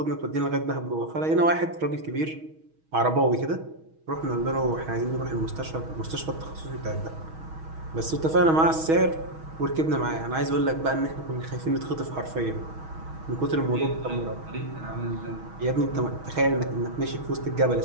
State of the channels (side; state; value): left; late; 6.3 ms